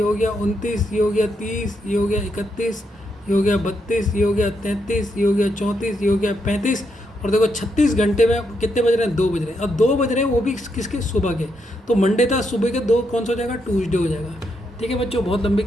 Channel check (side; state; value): both; normal; correlation 0.80